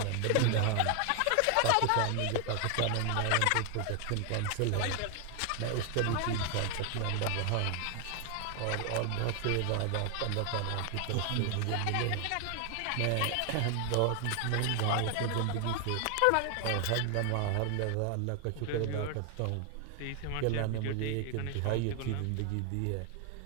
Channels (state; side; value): different; both; correlation 0.00